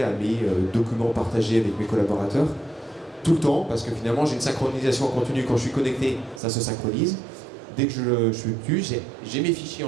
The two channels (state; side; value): drops out; left; at 6.4 s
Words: à mes documents partagés avec mes collaborateurs tout le temps, parce que finalement j'ai une synchronisation en continu. Quand je suis connecté, ça se synchronise. Dès que je suis dessus, j'ai mes fichiers